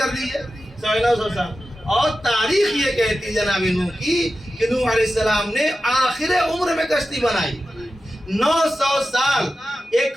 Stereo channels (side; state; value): both; normal; correlation 0.93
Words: دیجئے 950 سال. اور تاریخ یہ کہتی جناب نوح کی کہ نوح علیہ السلام نے آخر عمر میں کشتی بنائی. 900 سال ایک